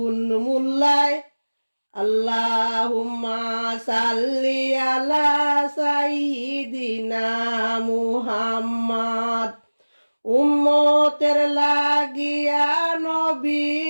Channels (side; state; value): both; inverted; correlation -1.00